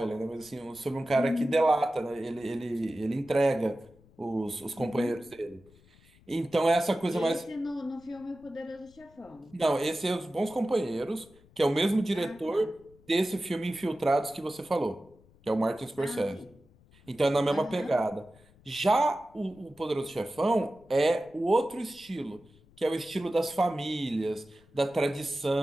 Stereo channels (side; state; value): left; noise; rumble, 28 dB below the sound